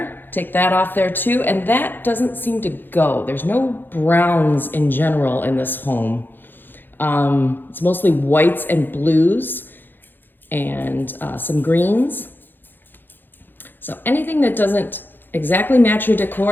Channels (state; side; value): late; right; 0.094 ms